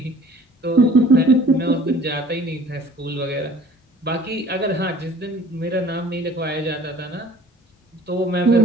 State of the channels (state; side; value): normal; both; correlation 0.50